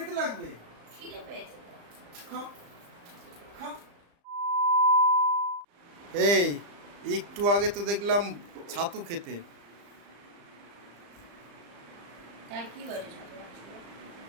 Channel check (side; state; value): left; late; 35 ms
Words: লাগবে? খিদে পেয়েছে তো। খাও খাও। এই একটু আগে তো দেখলাম ছাতু খেতে। তাই কি হয়েছে ছাতু খাচ্ছিল?